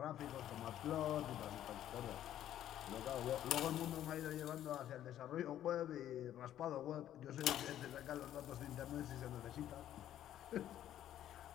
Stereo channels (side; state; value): right; quieter; 11.7 dB